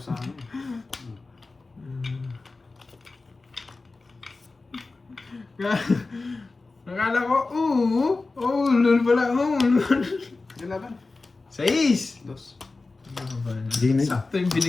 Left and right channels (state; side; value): quieter; right; 3.6 dB